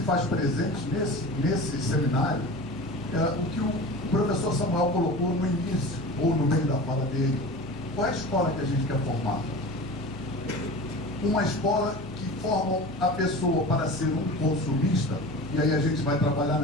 faz presente nesse seminário é o que o professor Samuel colocou no início, ou no meio da fala dele. Qual é a escola que a gente quer formar? Uma escola que forma a pessoa para ser um consumista, e aí a gente vai trabalhar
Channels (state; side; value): normal; both; correlation 0.34